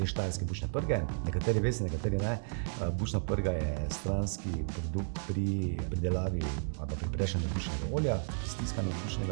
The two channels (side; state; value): left; silent; digital silence